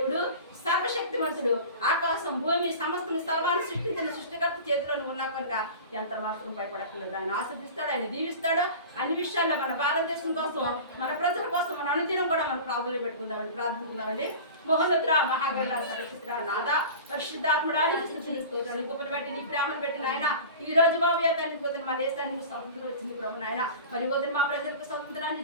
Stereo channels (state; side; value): inverted; both; correlation -0.35